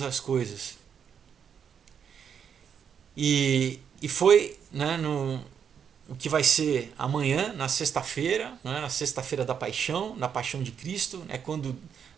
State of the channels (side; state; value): left; quieter; 7.6 dB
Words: as coisas. E foi, né, o que vai ser amanhã, na sexta-feira, né, na sexta-feira da paixão, na paixão de Cristo, é quando,